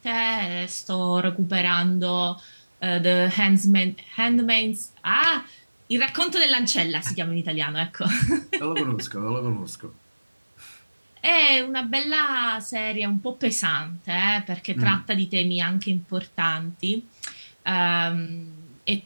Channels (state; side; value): inverted; both; correlation -1.00